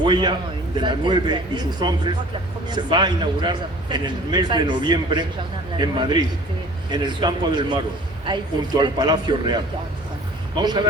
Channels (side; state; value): both; normal; correlation 0.48